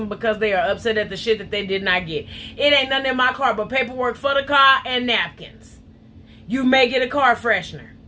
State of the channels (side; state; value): both; identical; correlation 1.00